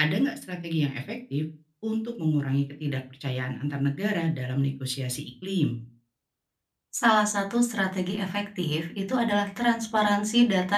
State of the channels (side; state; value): both; identical; correlation 1.00